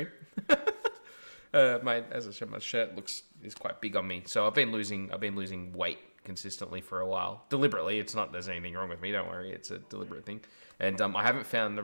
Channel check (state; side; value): inverted; both; correlation -1.00